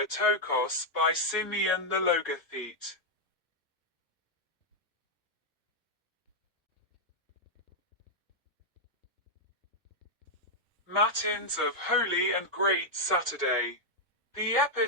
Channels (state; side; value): normal; both; correlation -0.03